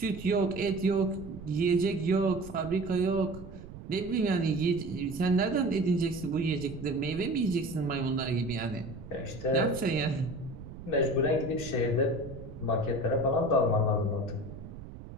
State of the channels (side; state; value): right; noise; rumble, 14 dB below the sound